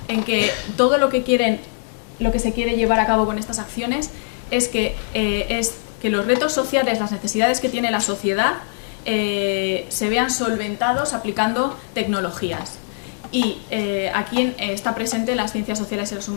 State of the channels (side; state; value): right; silent; digital silence